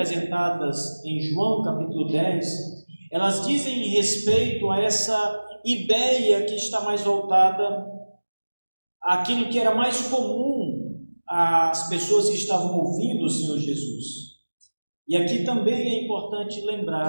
em João capítulo 10, elas dizem respeito a essa ideia que está mais voltada àquilo que era mais comum às pessoas que estavam ouvindo o Senhor Jesus. E aqui também é importante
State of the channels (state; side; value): inverted; both; correlation -1.00